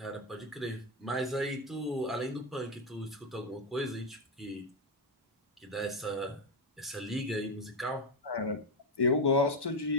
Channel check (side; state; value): both; normal; correlation 0.09